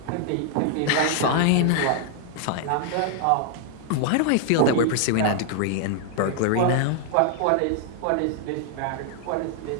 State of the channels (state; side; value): different; both; correlation 0.00